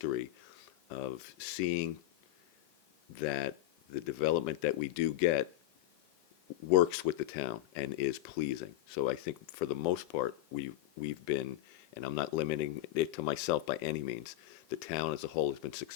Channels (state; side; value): quieter; right; 14.7 dB